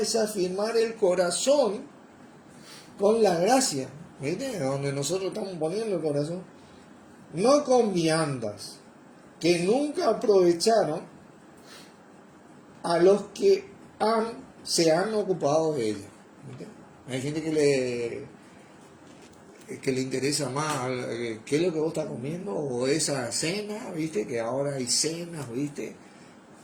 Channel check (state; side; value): identical; both; correlation 1.00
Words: afirmar el corazón con la gracia. ¿Viste? Donde nosotros estamos poniendo el corazón. No con viandas, que nunca aprovecharon a los que se han ocupado de ellas. ¿Viste? Hay gente que le interesa más qué es lo que vos estás comiendo o esa cena, ¿viste? Que ahora hay cenas, ¿viste?